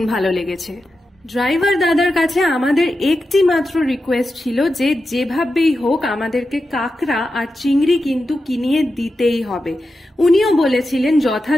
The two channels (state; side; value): normal; both; correlation 0.90